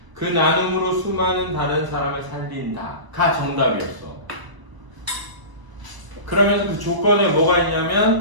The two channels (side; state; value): left; late; 1.0 ms